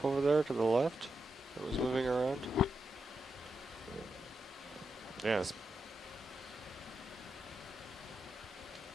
over there to the left that was moving around. Yes.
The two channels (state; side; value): normal; both; correlation 0.86